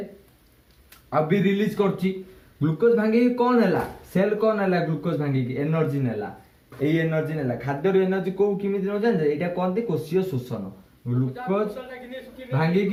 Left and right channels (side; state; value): both; identical; correlation 1.00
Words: अभी रिलीज करची। ग्लूकोज भांगी कौन है सेल कौन है ग्लूकोज भांगी की एनर्जी नेला। एई एनर्जी नेला खाद्य एनर्जी को किमिति न जान एटा कोन कोशीय शोषण। ग्लूकोज भांगी